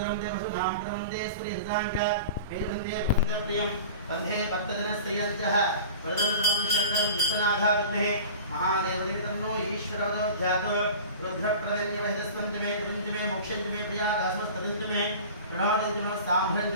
देवसुधाम प्रवंदे स्त्रीहृदांक वेदवंदे वंदप्रियम वंदे भक्तजनस्त्रियंचः वरदं सर्वं शङ्करं विश्वनाथा विद्महे महादेवदेव तन्नो ईश्वरवदो ध्यातो रुद्रप्रदन्यवहितस्वन्तमे कृतञ्चमे मोक्षञ्चमे प्रियादासमस्तदन्तमे प्रणवदञ्चमे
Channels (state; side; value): inverted; both; correlation -0.37